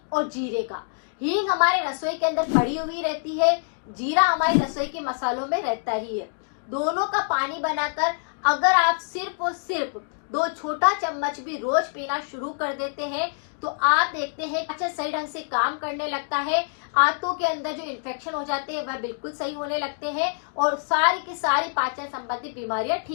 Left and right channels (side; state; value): right; silent; digital silence